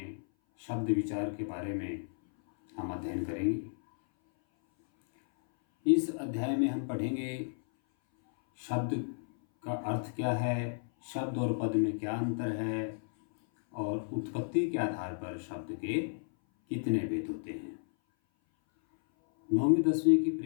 शब्द विचार के बारे में हम अध्ययन करेंगे। इस अध्याय में हम पढ़ेंगे शब्द का अर्थ क्या है, शब्द और पद में क्या अंतर है और उत्पत्ति के आधार पर शब्द के कितने भेद होते हैं। 9वीं 10वीं की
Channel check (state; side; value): silent; right; 56 dB below the other